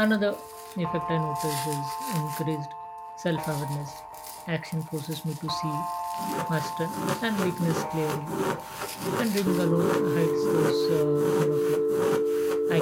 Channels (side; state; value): both; identical; correlation 1.00